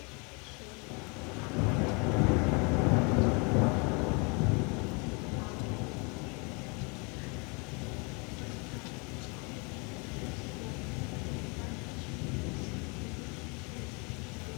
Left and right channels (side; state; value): right; quieter; 31.8 dB